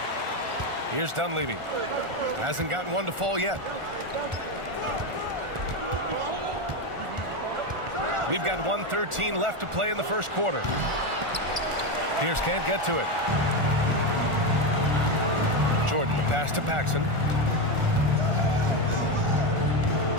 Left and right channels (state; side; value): late; left; 1.4 ms